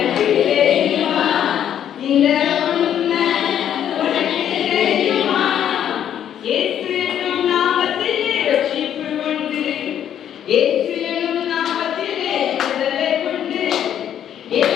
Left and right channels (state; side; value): quieter; right; 9.9 dB